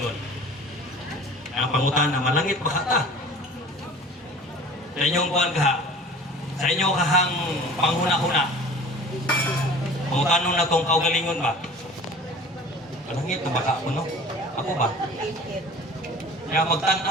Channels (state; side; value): normal; both; correlation 0.43